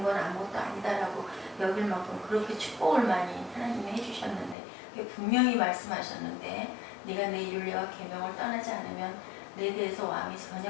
건 아무것도 아니다라고 여길 만큼 그렇게 축복을 많이 하나님이 해주셨는데 분명히 말씀하셨는데 네가 내 율례와 계명을 떠나지 않으면 내 대에서 왕이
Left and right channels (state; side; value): drops out; right; at 4.5 s